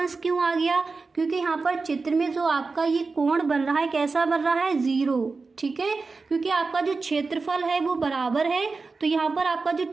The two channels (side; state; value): left; quieter; 4.1 dB